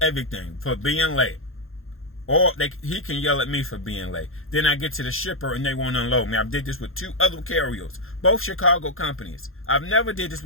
everything, for being late. Or he can yell at me for being late. Then I get to the shipper and they won't unload me. I did this with 2 other carriers, both Chicago companies. I've never did this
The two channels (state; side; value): late; right; 0.61 ms